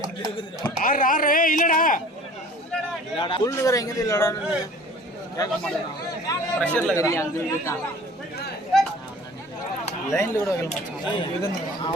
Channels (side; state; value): both; normal; correlation 0.46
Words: இல்லடா புல்லுகிற எங்க இல்லடா கேட்க மாட்டேன். பிரஷர்ல லைன்ல கூட வைக்கல மச்சான்.